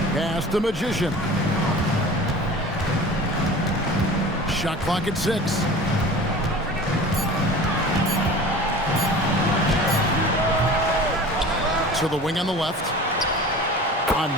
Pass the Magician. Shot clock at 6. To the wing on the left. A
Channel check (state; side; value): normal; both; correlation 0.39